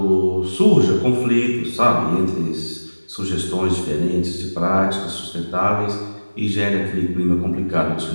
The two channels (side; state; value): both; inverted; correlation -1.00